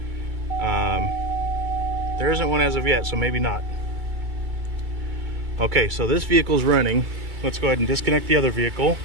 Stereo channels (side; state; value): left; late; 2.3 ms